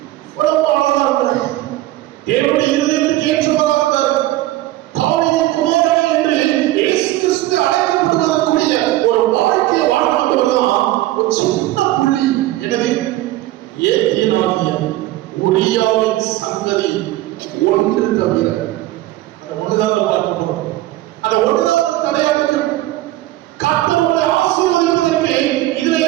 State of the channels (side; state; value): left; quieter; 16.0 dB